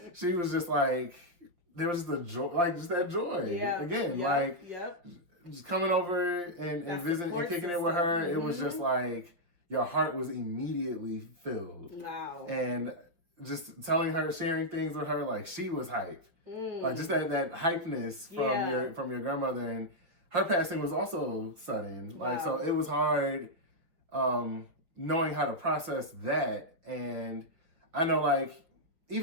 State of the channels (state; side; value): late; left; 5.8 ms